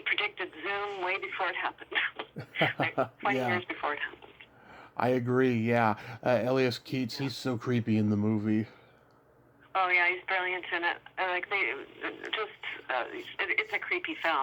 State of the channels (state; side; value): identical; both; correlation 1.00